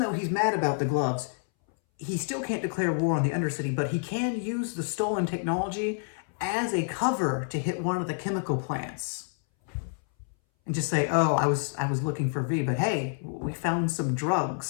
he's mad about the gloves, he still can't declare war on the Undercity, but he can use the stolen technology as a cover to hit one of the chemical plants. And just say, oh, I was looking for V, but hey, we found some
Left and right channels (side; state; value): right; silent; 59 dB below the other